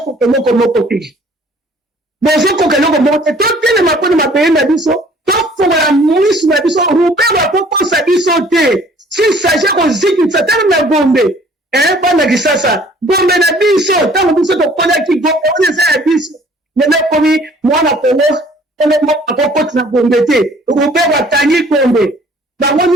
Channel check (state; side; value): normal; both; correlation 0.55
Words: eloko moko te bozokoka eloko moko te totelema mpona mabeye na biso tofongola misu na biso rubero akokosa biso te s'il s'agit kozikisa tala na Gombe bana kisasa Gombe na biso ntango biso tokodaki Gombe oyo eza ya biso lelo komi mwana kongo akokoti na Gombe te rubero atangi Gombe bango